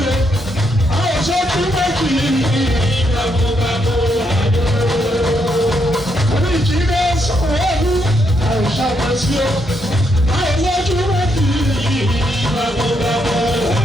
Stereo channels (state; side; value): normal; both; correlation 0.77